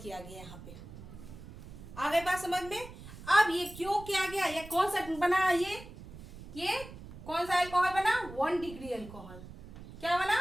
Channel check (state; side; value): noise; right; rumble, 15 dB below the sound